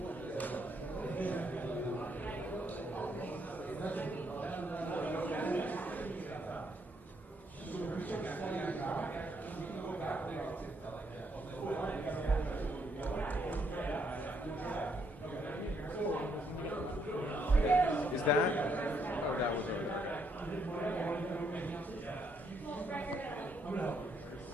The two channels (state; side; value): normal; both; correlation 0.73